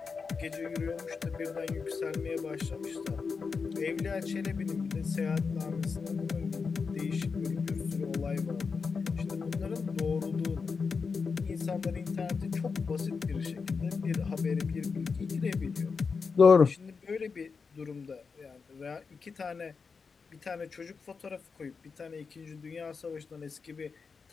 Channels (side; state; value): right; quieter; 5.1 dB